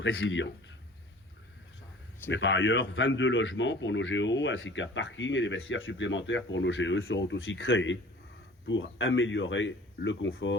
Mais par ailleurs, 22 logements pour nos GO, ainsi qu'un parking et des vestiaires supplémentaires pour nos GE seront aussi créés pour améliorer le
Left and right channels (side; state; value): both; normal; correlation 0.46